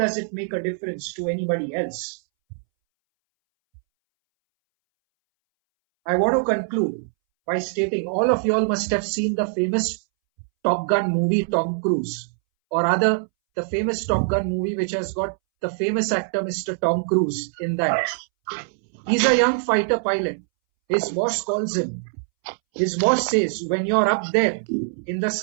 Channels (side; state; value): left; silent; 63 dB below the other